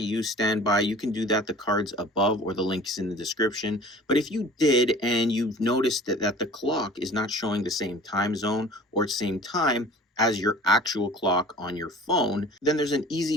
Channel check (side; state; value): both; normal; correlation 0.45